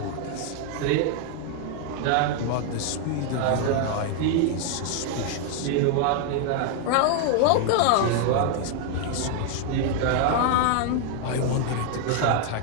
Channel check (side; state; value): both; different; correlation 0.00